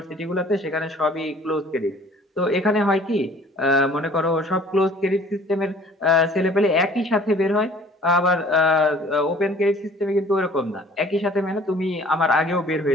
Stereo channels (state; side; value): normal; both; correlation 0.52